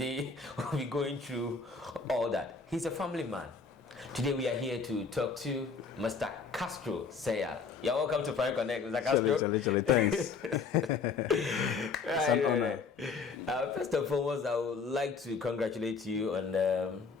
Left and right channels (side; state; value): right; quieter; 5.1 dB